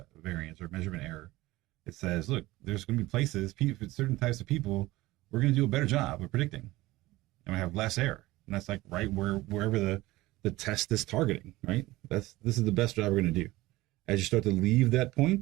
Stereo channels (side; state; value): left; quieter; 18.8 dB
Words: or measurement error. It says, look, there's going to be places, certain types of people, we're going to do a better job of predicting, and we have less error. And that's like right wherever the test is targeting, right? This is the best job we're going to do. As you start to leave that